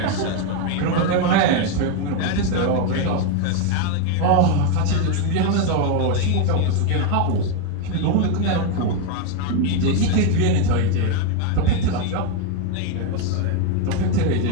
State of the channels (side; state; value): both; different; correlation 0.01